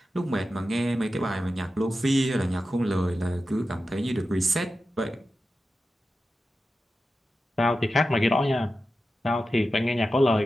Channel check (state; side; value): normal; both; correlation 0.92